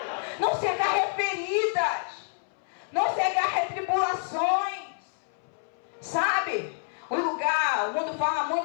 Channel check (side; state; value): right; silent; 59 dB below the other